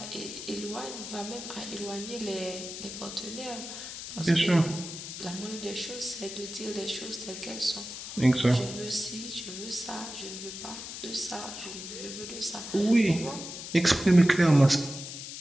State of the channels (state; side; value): noise; left; hiss, 9 dB below the sound